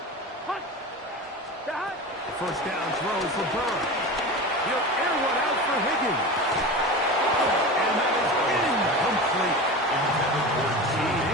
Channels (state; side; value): normal; both; correlation 0.29